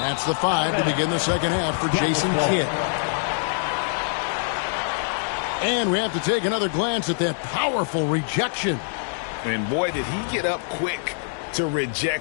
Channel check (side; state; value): right; silent; digital silence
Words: the 5 to begin the second half for Jason Kidd. And we have to take another glance at that powerful rejection. And boy, did he get up quick to